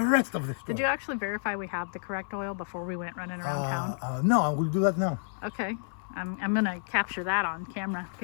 rest of the story. Did you actually verify we have the correct oil before we went running around town? No, I will do that now. Okay. I'm gonna capture that on camera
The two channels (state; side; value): silent; right; 58 dB below the other